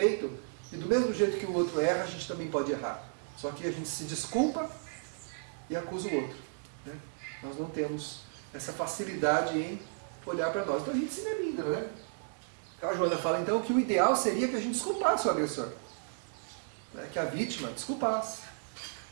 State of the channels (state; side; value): silent; left; digital silence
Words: e do mesmo jeito que o outro erra, a gente também pode errar. Só que a gente se desculpa e acusa o outro. Né? Nós não temos essa facilidade em olhar para nós. Então a gente se melindra, né? A Joana fala então que o ideal seria que a gente desculpasse o agressor. Né? Que a vítima desculpasse.